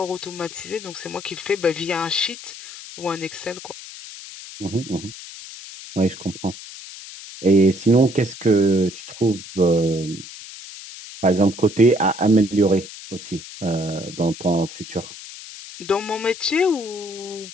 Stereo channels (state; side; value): noise; left; hiss, 14 dB below the sound